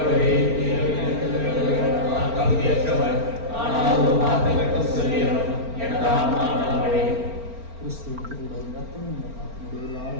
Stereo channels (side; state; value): left; late; 4.4 ms